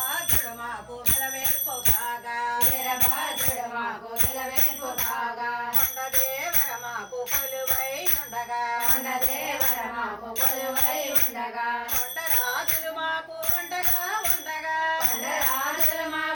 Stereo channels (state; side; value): identical; both; correlation 1.00